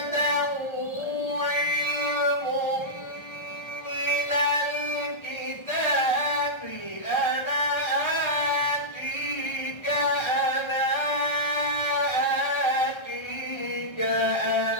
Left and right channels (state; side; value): late; right; 1.3 ms